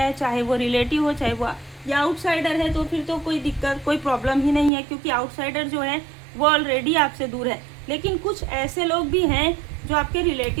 है, चाहे वो रिलेटिव हो चाहे वो या आउटसाइडर है, तो फिर तो कोई दिक्कत कोई प्रॉब्लम ही नहीं है, क्योंकि आउटसाइडर जो है वो ऑलरेडी आपसे दूर है। लेकिन कुछ ऐसे लोग भी हैं जो आपके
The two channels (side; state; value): left; drops out; at 4.7 s